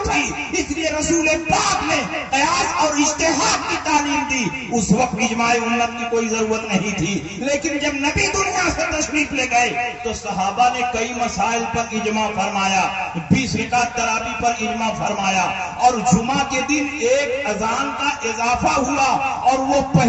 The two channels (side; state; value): both; identical; correlation 1.00